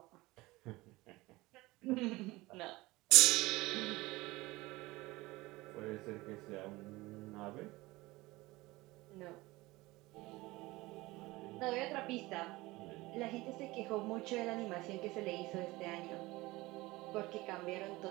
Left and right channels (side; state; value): left; quieter; 20.6 dB